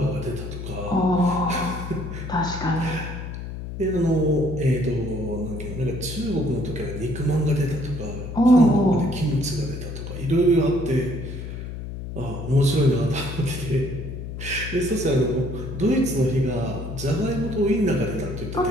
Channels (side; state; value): left; noise; hum, 8 dB below the sound